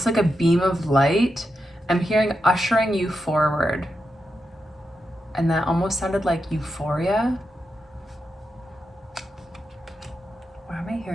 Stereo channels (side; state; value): both; normal; correlation 0.87